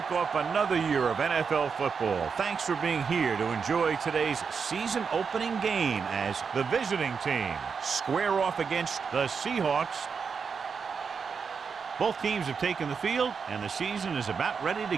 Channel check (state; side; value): quieter; left; 5.8 dB